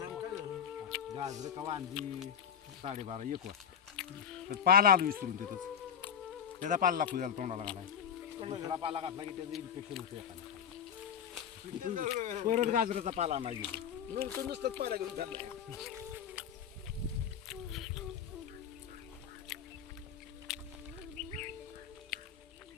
गाजर कवा आणली 12:30 1 वाजता पाला आलो विसरून तिथंच त्याचा पाला लागतो त्याला तोंडाला घालाय दुसरा पाला घातला की त्याचं इन्फेक्शन होतं एखादा परत गाजराचा पाला नाही गेलो नुसतंच पाला घेऊन चाललाय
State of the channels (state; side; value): quieter; right; 8.1 dB